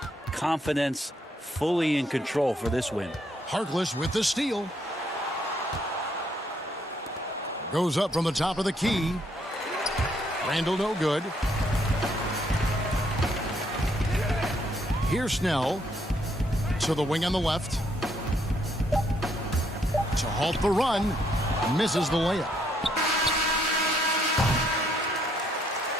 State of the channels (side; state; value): both; normal; correlation 0.71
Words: confidence, fully in control for this win. Harkless with the steal. Goes up from the top of the key. Randall no good. Here's Snell to the wing on the left. To halt the run. Misses the layup.